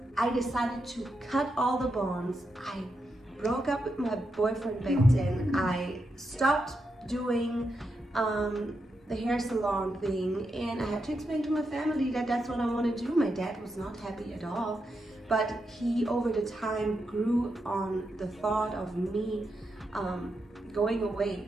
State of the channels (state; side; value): normal; both; correlation 0.85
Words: I decided to cut all the bonds. I broke up with my boyfriend back then. I stopped doing the hair salon thing, and I had to explain to my family that that's what I want to do. My dad was not happy at all, but he over the time grew on the thought of me going away.